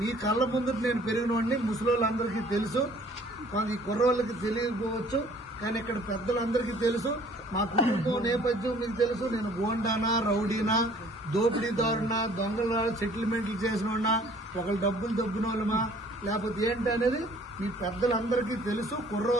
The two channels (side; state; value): both; normal; correlation 0.55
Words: కళ్ళ ముందు నేను పెరిగినవాడిని, ముసలోళ్ళందరికీ తెలుసు, ఈ కుర్రోళ్ళకి తెలియకపోవచ్చు, కానీ ఇక్కడ పెద్దలందరికీ తెలుసు. మా కుటుంబం నేపథ్యం మీకు తెలుసు. నేను గోండానా, రౌడీనా, దోపిడీదారునా, దొంగల సెటిల్మెంట్లు చేసినోడినా, ఒకళ్ళు డబ్బులు దొబ్బిన వాళ్ళమా, లేకపోతే ఏంటి అనేది మీ పెద్దలందరికీ తెలుసు.